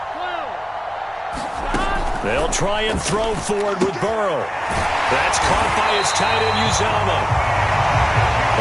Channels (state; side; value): identical; both; correlation 1.00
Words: They'll try and throw forward with Burrow. That's caught by his tight end, Uzomah.